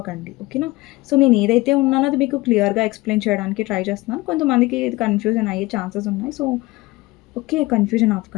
ఓకేనా? సో, నేను ఏదైతే ఉన్నానో అది మీకు క్లియర్‌గా ఎక్స్‌ప్లెయిన్ చేయడానికి ట్రై చేస్తున్నాను. కొంతమందికి ఇది కన్‌ఫ్యూజన్ అయ్యే ఛాన్సెస్ ఉన్నాయి. So, okay. కన్‌ఫ్యూజన్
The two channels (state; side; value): quieter; right; 20.8 dB